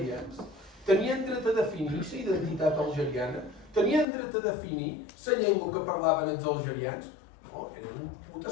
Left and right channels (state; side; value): drops out; right; at 4.0 s